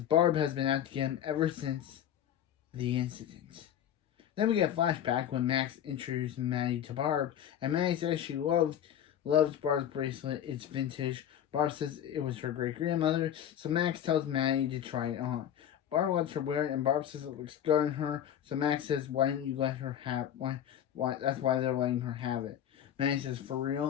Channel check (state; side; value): quieter; right; 10.2 dB